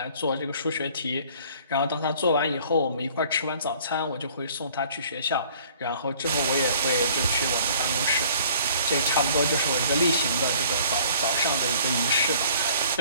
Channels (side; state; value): both; inverted; correlation -0.54